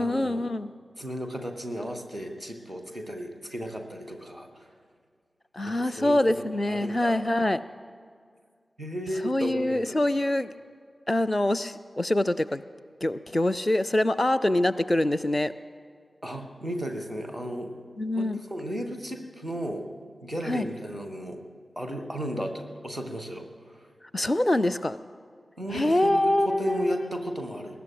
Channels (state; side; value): normal; both; correlation 0.95